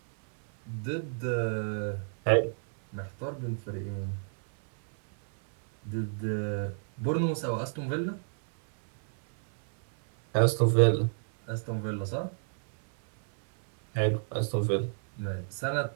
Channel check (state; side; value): silent; left; 58 dB below the other